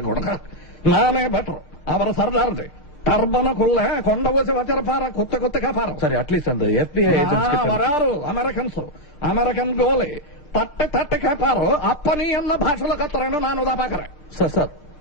கூட நானே பெட்டர். அவர் சர்தார்து டர்பனுக்குள்ள கொண்ட ஊசி வச்சிருப்பாரு, குத்து குத்து கேப்பாரு. சரி, அட்லீஸ்ட் அந்த FBI ஏஜென்ட்ஸ் வராரு అమెరికన్స్, అమెరికన్ గోలి తట్టి తట్టి కేపారు. అప్ప నీ అన్న భాషలో కత్తరేను నాను దా పాకరే. సార్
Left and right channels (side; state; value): right; late; 6.7 ms